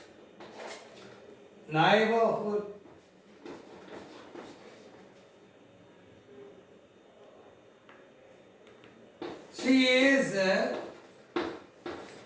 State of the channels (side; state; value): both; identical; correlation 1.00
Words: Neighborhood. She is a